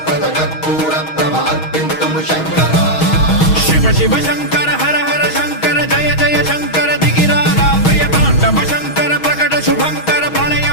ప్రద కర్పూర ప్రభ అర్పింతుము శంకరా శివ శివ శంకర హర హర శంకర జయ జయ శంకర దిగిరారా ప్రియ తాండవ శంకర ప్రకట శుభంకర ప్రళయ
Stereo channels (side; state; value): right; late; 6.3 ms